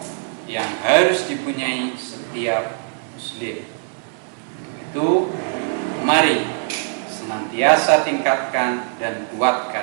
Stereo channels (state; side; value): silent; left; 57 dB below the other